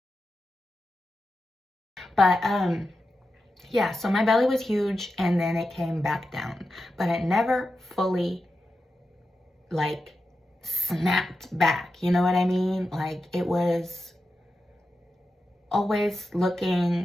But, yeah, so my belly was huge and then it came back down. But it never fully, snapped back. You know what I mean? Like, it was always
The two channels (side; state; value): both; normal; correlation 0.90